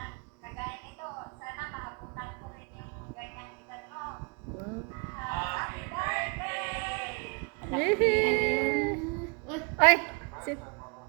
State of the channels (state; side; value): quieter; left; 32.3 dB